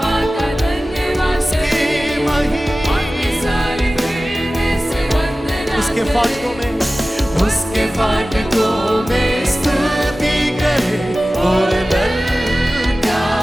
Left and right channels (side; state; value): both; normal; correlation 0.96